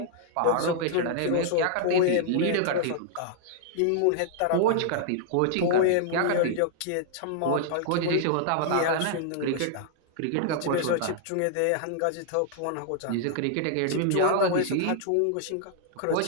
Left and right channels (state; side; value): different; both; correlation -0.01